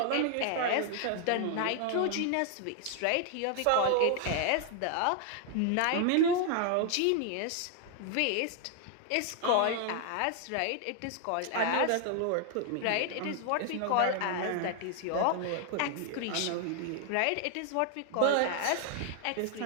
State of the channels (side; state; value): both; different; correlation 0.00